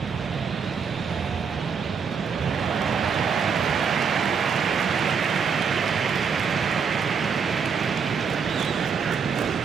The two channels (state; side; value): quieter; left; 6.2 dB